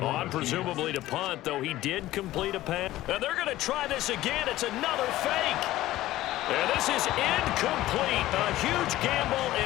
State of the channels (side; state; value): right; quieter; 15.7 dB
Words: On presumably to punt, though he did complete a pass. And they're going to try this again. It's another fake. And this is incomplete. A huge gamble,